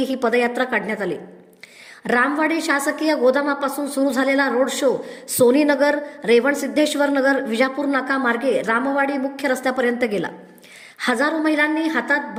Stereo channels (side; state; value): both; identical; correlation 1.00